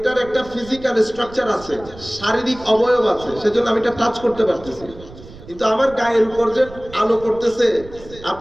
একটা ফিজিক্যাল স্ট্রাকচার আছে, শারীরিক অবয়ব আছে, সেজন্য আমি এটা টাচ করতে পারতেছি। কিন্তু আমার গায়ের উপর যে আলো পড়তেছে,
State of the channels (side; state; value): right; noise; rumble, 18 dB below the sound